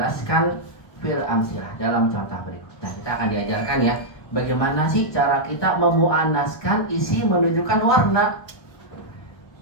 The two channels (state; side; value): late; right; 1.2 ms